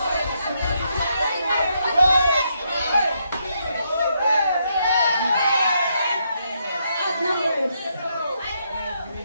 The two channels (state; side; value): inverted; both; correlation -0.78